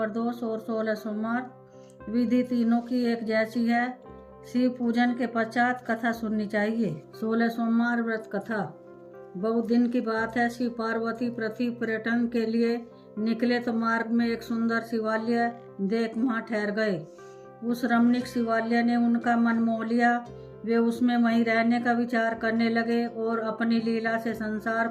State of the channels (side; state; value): both; identical; correlation 1.00